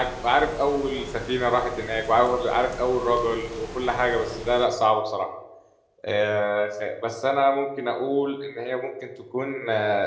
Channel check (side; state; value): both; identical; correlation 1.00